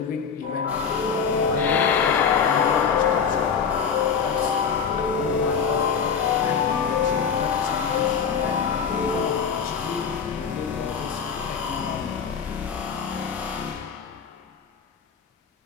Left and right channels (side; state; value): right; quieter; 6.5 dB